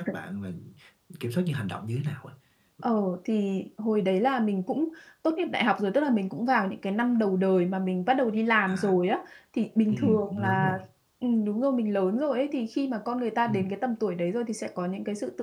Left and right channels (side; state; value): both; identical; correlation 1.00